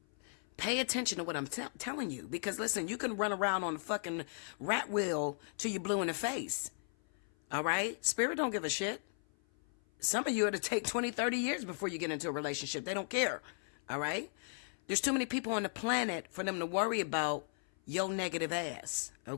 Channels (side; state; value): right; silent; 54 dB below the other